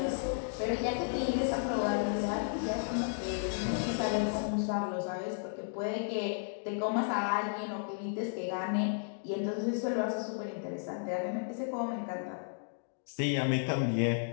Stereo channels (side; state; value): right; silent; digital silence